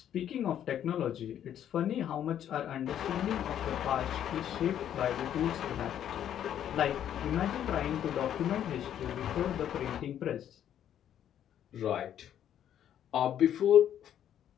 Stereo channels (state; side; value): quieter; right; 10.2 dB